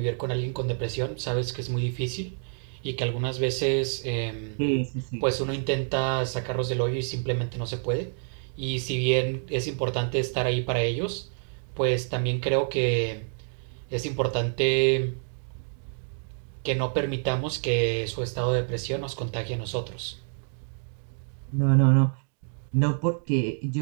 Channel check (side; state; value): left; silent; 60 dB below the other